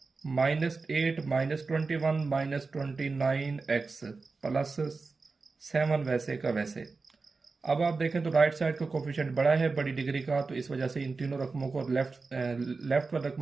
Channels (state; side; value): quieter; left; 4.1 dB